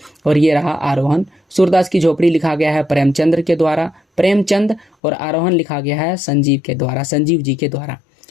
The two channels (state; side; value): drops out; right; at 4.9 s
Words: और ये रहा आरोहण। सूरदास की झोपड़ी लिखा गया है प्रेमचंद के द्वारा, प्रेमचंद, और आरोहण लिखा गया है संजीव जी के द्वारा।